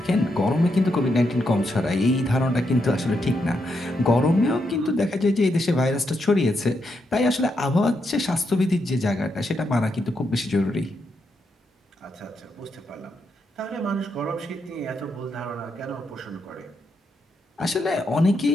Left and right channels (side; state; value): both; normal; correlation 0.81